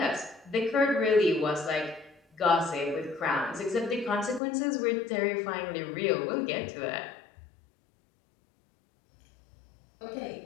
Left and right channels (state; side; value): drops out; right; at 4.4 s